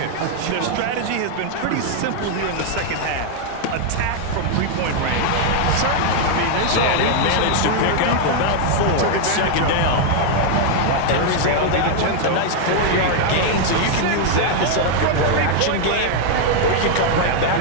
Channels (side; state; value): both; different; correlation 0.00